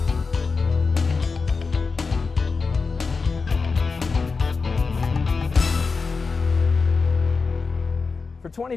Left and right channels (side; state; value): right; quieter; 4.5 dB